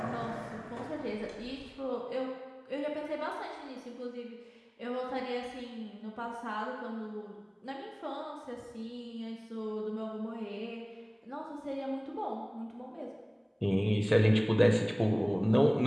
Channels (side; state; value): both; identical; correlation 1.00